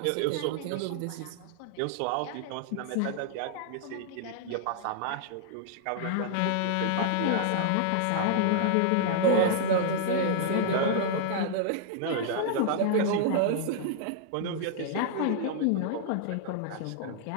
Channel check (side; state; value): both; different; correlation -0.01